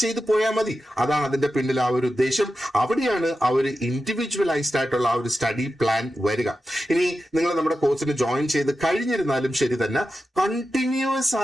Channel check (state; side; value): normal; both; correlation 0.91